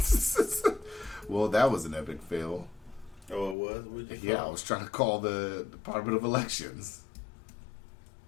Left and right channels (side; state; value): right; drops out; at 3.6 s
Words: Well, that was an epic fail. Oh, it was? Yeah, I was trying to call the Department of Elections.